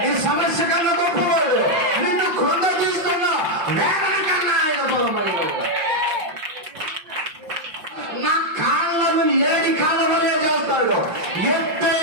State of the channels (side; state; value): left; late; 5.6 ms